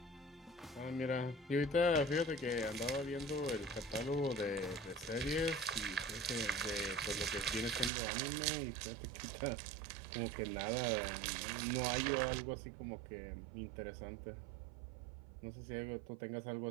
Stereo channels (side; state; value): left; drops out; at 7.9 s